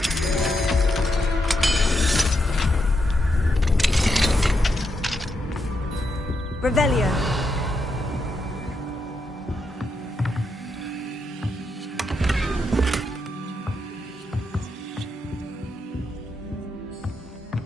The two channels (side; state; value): both; normal; correlation 0.82